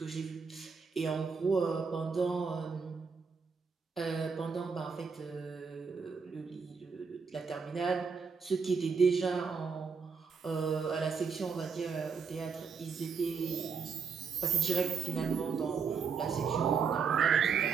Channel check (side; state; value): left; quieter; 5.8 dB